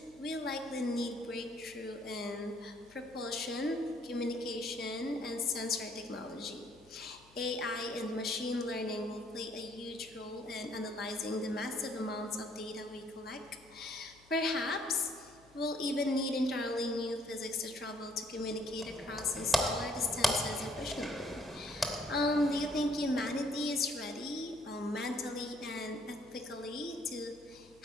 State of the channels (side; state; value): left; noise; hum, 27 dB below the sound